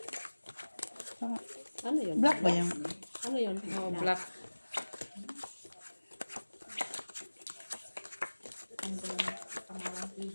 Ano yun? Black ba yung... Ano yun? Oh, black.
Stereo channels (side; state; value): both; inverted; correlation -1.00